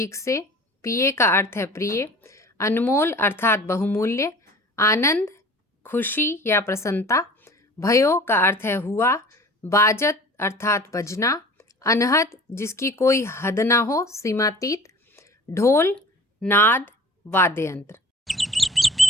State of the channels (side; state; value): both; normal; correlation 0.44